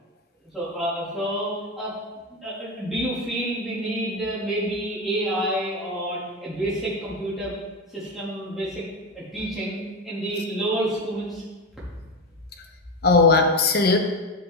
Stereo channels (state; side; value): normal; both; correlation 0.17